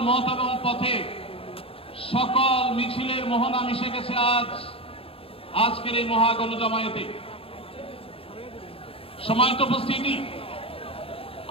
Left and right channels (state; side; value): late; right; 0.27 ms